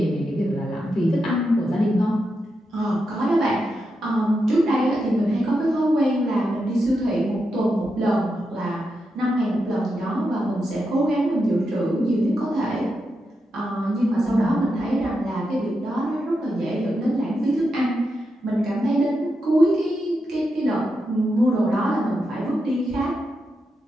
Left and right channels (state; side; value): normal; both; correlation 0.86